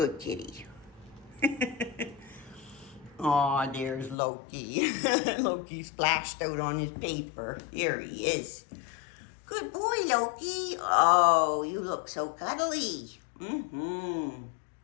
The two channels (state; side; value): drops out; right; at 4.2 s